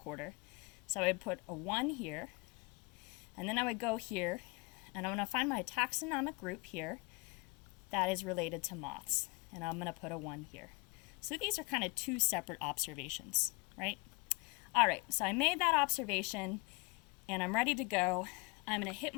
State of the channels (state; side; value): quieter; right; 28.3 dB